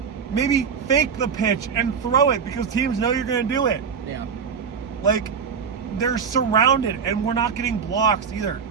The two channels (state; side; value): quieter; left; 6.3 dB